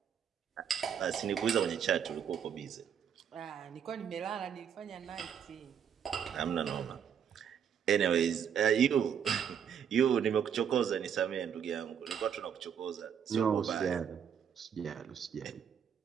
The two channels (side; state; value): left; quieter; 8.0 dB